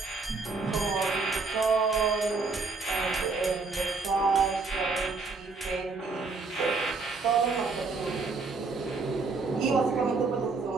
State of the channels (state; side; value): quieter; left; 4.1 dB